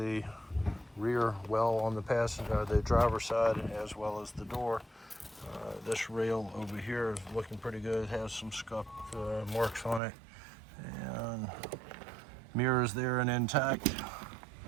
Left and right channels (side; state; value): left; drops out; at 10.0 s